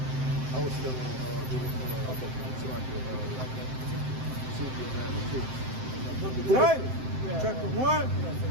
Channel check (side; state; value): left; late; 7.7 ms